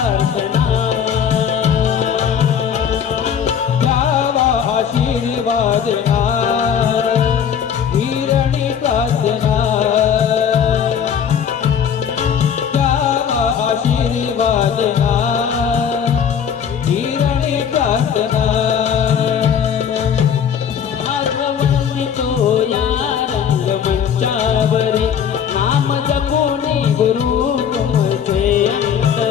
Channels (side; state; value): right; quieter; 7.9 dB